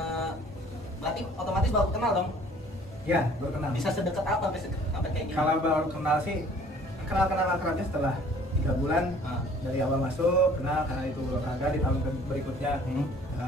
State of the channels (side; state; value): both; normal; correlation 0.54